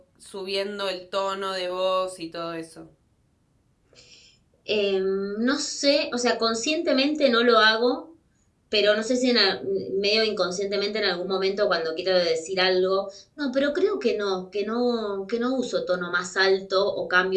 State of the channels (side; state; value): both; identical; correlation 1.00